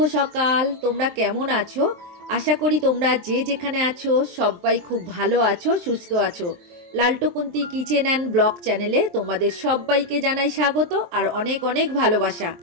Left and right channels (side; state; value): left; late; 23 ms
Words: সকাল। তোমরা কেমন আছো? আশা করি তোমরা যে যেখানে আছো সবাই খুব ভালো আছো, সুস্থ আছো। লালটুকুন্তি কিচেন অ্যান্ড ব্লগ চ্যানেলে তোমাদের সবাইকে জানাই স্বাগত আর অনেক অনেক ভালোবাসা।